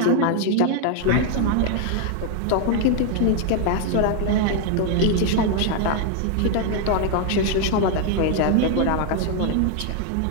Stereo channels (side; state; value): both; different; correlation 0.00